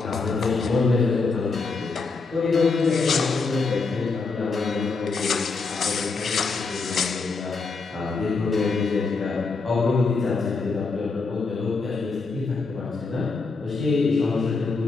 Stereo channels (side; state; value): right; quieter; 4.2 dB